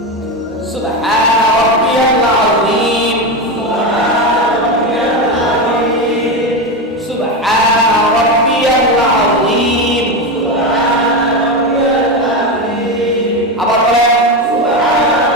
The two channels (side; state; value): both; normal; correlation 0.15